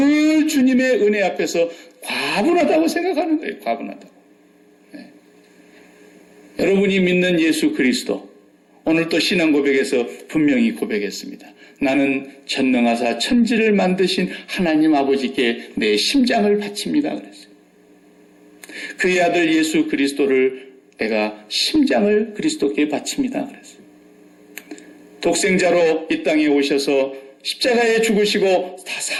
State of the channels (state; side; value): identical; both; correlation 1.00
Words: 주님의 은혜 앞에서 과분하다고 생각하는 거예요. 과분하다고. 여러분이 믿는 예수 그리스도 오늘 또 신앙 고백에서 분명히 고백했습니다. 나는 전능하사 천지를 만드신 하나님 아버지께 내 심장을 바칩니다. 그랬어요. 그의 아들 예수 그리스도를 내가 심장을 그리스도께 바칩니다. 그랬어요. 독생자로 이 땅에 오셔서 십자가에 죽으시고 다